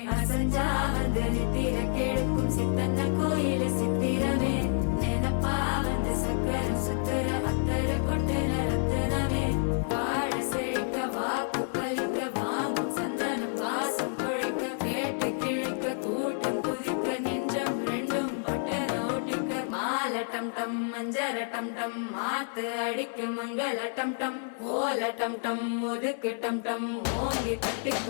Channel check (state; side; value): silent; right; 59 dB below the other